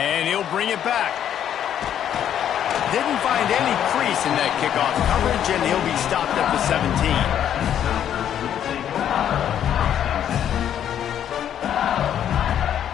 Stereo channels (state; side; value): quieter; right; 9.9 dB